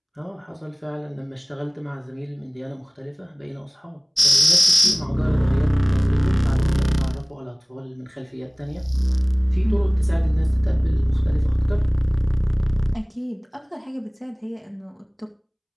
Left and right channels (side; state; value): both; identical; correlation 1.00